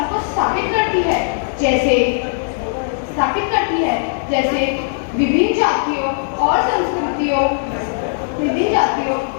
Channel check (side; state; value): right; silent; digital silence